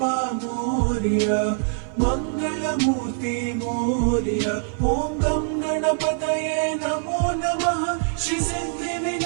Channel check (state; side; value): silent; left; 55 dB below the other